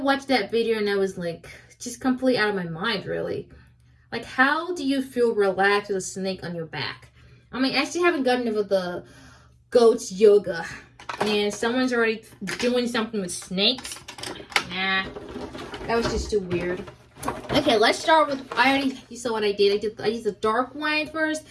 that video and I was like, just completely out of my mind, really. Like, how do you feel relaxed with a snake on your back? I mean, I still haven't gotten over the goat's yoga. And someone's already doing something with snakes. Nah, that was just too weird. Okay, let's start with, you saw what I did. I used the dark one first,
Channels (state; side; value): identical; both; correlation 1.00